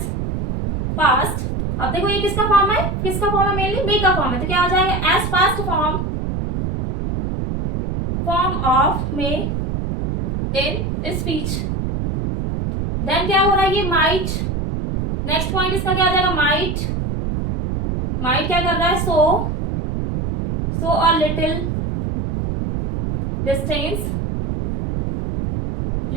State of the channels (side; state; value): right; noise; rumble, 2 dB below the sound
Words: पास्ट। अब देखो ये किसका फॉर्म है, किसका फॉर्म है, मेनली मे का फॉर्म है, तो क्या आ जाएगा as past form of may in speech. Then क्या हो रहा है, ये माइट, नेक्स्ट पॉइंट इसका क्या आ जाएगा माइट क्या कर रहा है, सो अ लिटिल डिस्टेंस